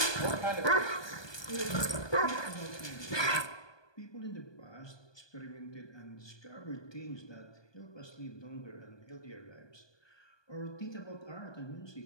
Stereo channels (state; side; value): late; right; 1.2 ms